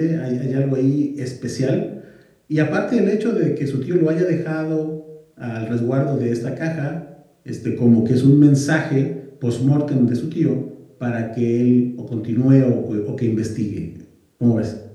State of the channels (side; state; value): both; identical; correlation 1.00